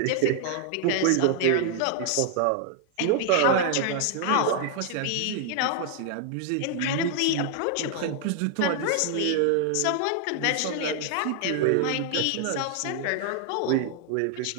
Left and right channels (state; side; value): different; both; correlation 0.00